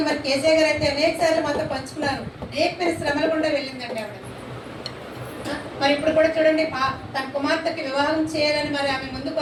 కేసీఆర్ గారు అయితే అనేక సార్లు మాతో పంచుకున్నారు. అనేకమైన శ్రమలు కూడా వెళ్ళిందండి ఆవిడ. మరి ఇప్పుడు కూడా చూడండి, తన కుమార్తెకి వివాహం చేయాలని ఆమె ముందుకు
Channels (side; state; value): both; identical; correlation 1.00